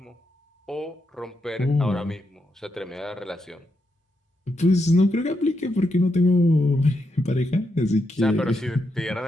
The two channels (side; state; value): both; normal; correlation 0.83